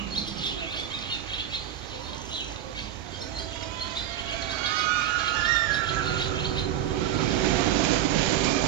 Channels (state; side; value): quieter; left; 11.0 dB